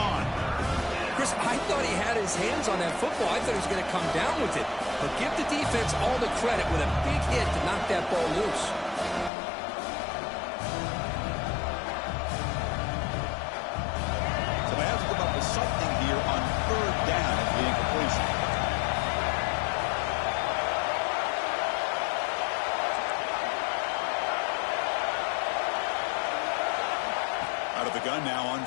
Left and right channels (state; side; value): drops out; right; at 9.3 s